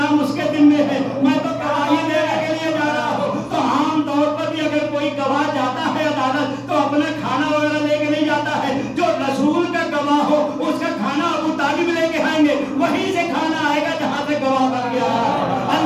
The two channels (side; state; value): both; identical; correlation 1.00